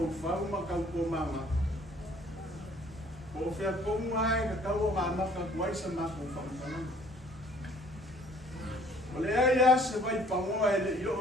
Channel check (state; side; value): normal; both; correlation 0.57